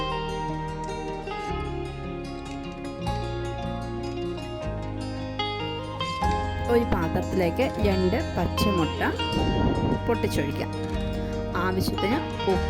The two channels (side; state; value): both; identical; correlation 1.00